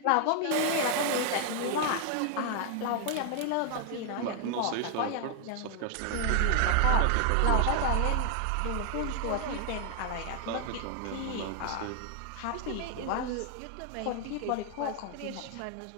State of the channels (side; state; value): both; different; correlation 0.00